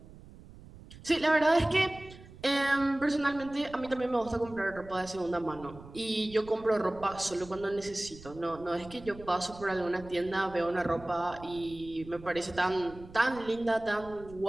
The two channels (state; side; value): noise; right; rumble, 18 dB below the sound